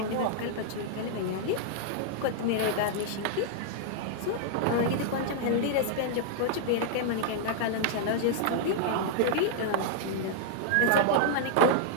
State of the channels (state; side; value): different; both; correlation -0.01